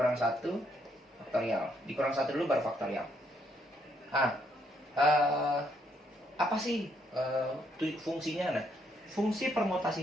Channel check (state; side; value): normal; both; correlation 0.72